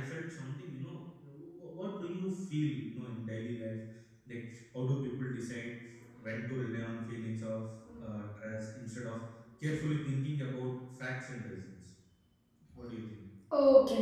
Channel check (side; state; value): both; identical; correlation 1.00